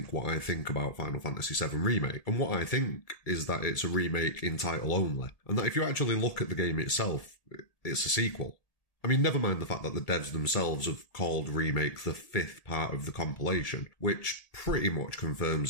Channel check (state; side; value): late; right; 1.8 ms